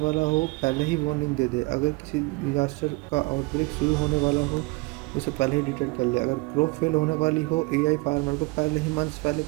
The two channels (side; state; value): left; quieter; 24.6 dB